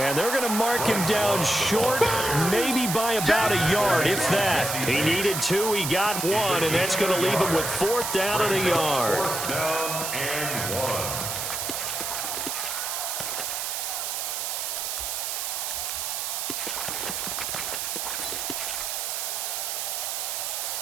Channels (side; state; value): right; noise; hiss, 2 dB below the sound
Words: they're going to mark him down short, maybe by about a yard, if that. He needed 2, he got 1, and that's going to leave him with 4th down and a yard. 4th down and 1.